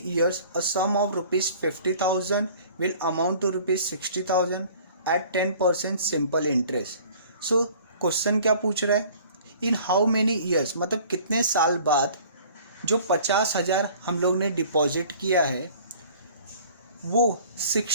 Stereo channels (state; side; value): inverted; both; correlation -0.50